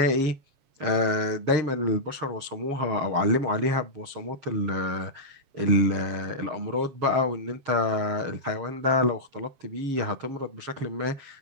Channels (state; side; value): late; left; 7.3 ms